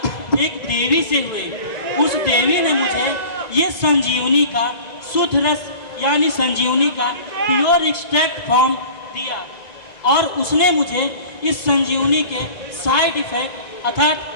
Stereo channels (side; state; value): right; late; 2.0 ms